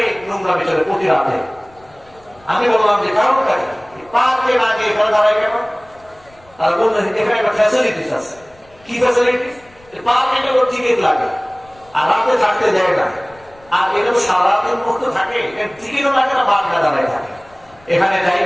নোংরা বিচারে প্রতি রাতে। আমি বললাম যে কারণটা কি, পার্কে না গিয়ে এখানে দাঁড়ায় কেন? তারা বললেন এখানে একটা ফ্যাসিলিটিস আছে। কি ফ্যাসিলিটিস? পার্কে টিকিট লাগে আর রাতে থাকতে দেয় না। আর এরকম সারাদিন মুক্ত থাকে, টিকিটও লাগে না, বাদ না দাঁড়ায় থাকে, এখানে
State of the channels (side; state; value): left; noise; rumble, 29 dB below the sound